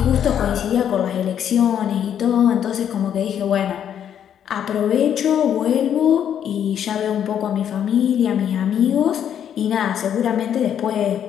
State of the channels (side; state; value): right; quieter; 9.3 dB